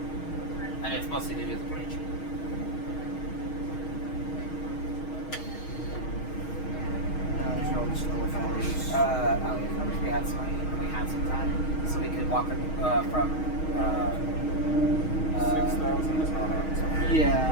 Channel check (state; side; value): late; right; 6.4 ms